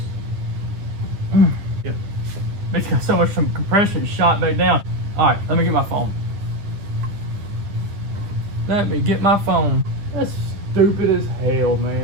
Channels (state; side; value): late; left; 9.9 ms